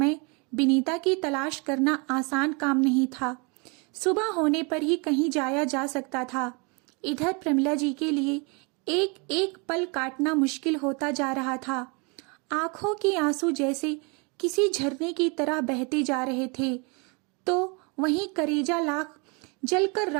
विनीता की तलाश करना आसान काम नहीं था। सुबह होने पर ही कहीं जाया जा सकता था। इधर प्रमिला जी के लिए एक एक पल काटना मुश्किल होता जा रहा था। आंखों के आंसू जैसे किसी झरने की तरह बहते जा रहे थे, तो वहीं करेजा लाख जलकर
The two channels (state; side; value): quieter; left; 31.8 dB